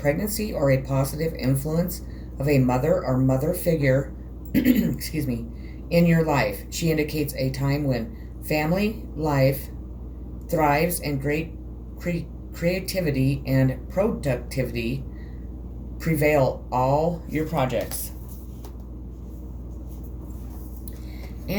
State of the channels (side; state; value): both; identical; correlation 1.00